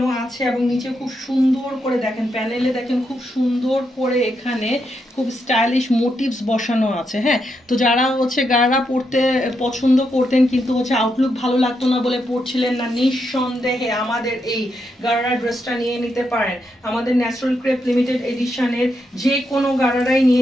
আছে, এবং নিচে খুব সুন্দর করে দেখেন প্যানেলে দেখেন খুব সুন্দর করে এখানে খুব স্টাইলিশ মোটিভস বসানো আছে। হ্যাঁ, তো যারা হচ্ছে গারারা পরতে পছন্দ করতেন কিন্তু হচ্ছে আউটলুক ভালো লাগতো না বলে পরছিলেন না, নিঃসন্দেহে আমাদের এই গারারা ড্রেসটা নিয়ে নিতে পারেন। আমাদের ন্যাচারাল ক্রেপ লিমিটেড এডিশনের যে কোনো গারারাই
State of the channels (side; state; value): both; normal; correlation 0.82